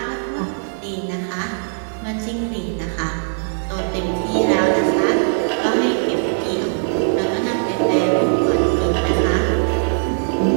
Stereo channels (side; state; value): left; silent; digital silence